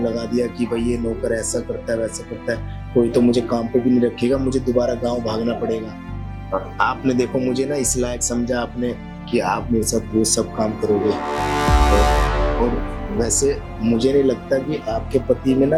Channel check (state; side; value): identical; both; correlation 1.00